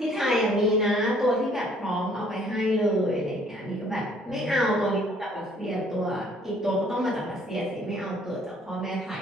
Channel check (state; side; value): normal; both; correlation 0.60